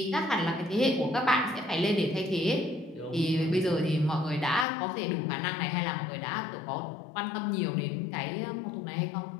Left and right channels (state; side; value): drops out; right; at 4.7 s